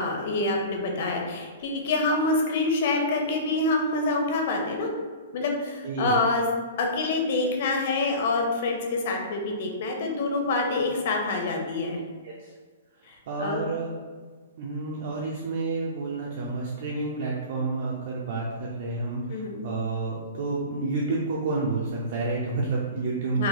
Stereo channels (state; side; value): inverted; both; correlation -0.36